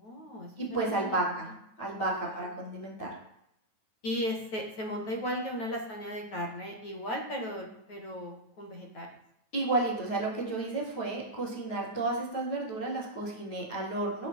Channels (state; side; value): late; right; 9.2 ms